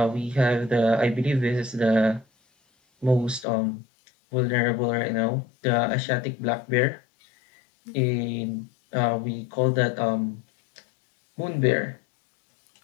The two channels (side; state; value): right; drops out; at 3.5 s